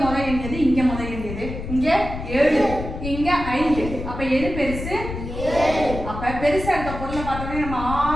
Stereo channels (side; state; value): left; noise; rumble, 8 dB below the sound